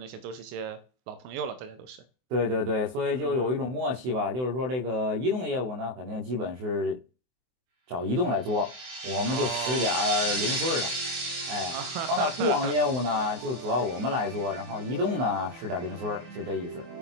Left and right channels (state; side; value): late; left; 24 ms